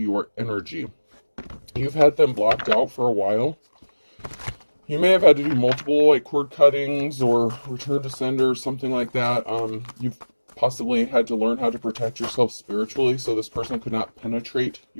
energy. You've had them blocked out for a while. You may have had to do multiple like cord cuttings or return to sender, something like that. You've possibly had to learn how to protect yourself spiritually so this person could not penetrate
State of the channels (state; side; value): inverted; both; correlation -1.00